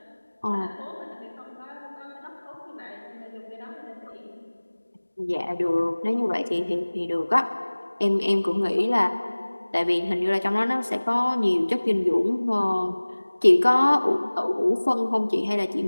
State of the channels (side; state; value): both; inverted; correlation -1.00